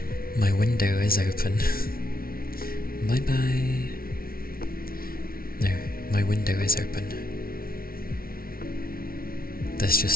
My window is open. Bye bye. No, my window is open. There's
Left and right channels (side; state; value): right; late; 0.43 ms